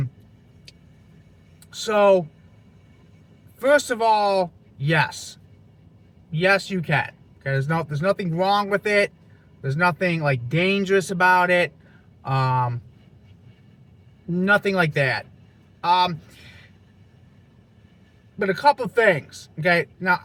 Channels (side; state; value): both; identical; correlation 1.00